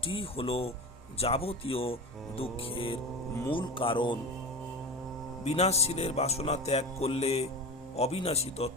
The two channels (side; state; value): both; normal; correlation 0.27